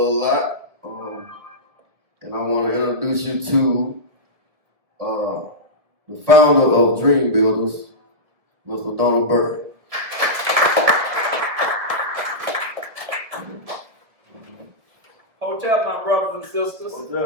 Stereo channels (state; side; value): late; left; 1.7 ms